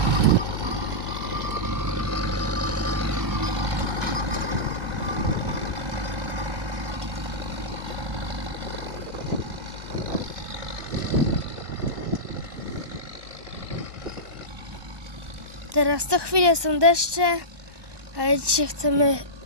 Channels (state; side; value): late; left; 1.1 ms